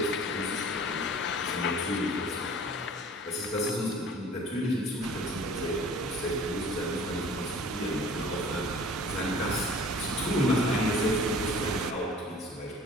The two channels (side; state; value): both; normal; correlation 0.47